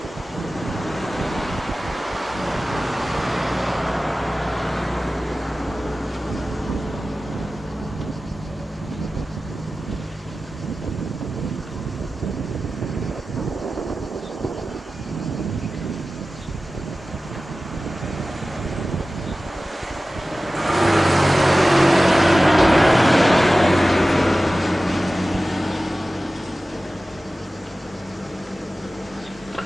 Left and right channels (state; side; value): normal; both; correlation 0.96